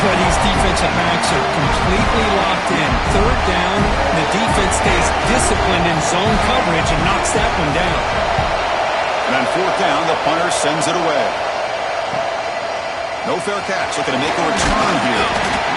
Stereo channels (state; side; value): identical; both; correlation 1.00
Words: these defensive backs are completely locked in. 3rd down, the defense stays disciplined in zone coverage and knocks that one down. And on 4th down, the punter sends it away. No fair catch. Looking to make a return here.